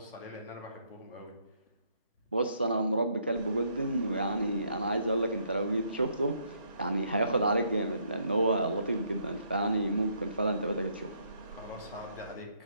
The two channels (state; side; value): inverted; both; correlation -0.70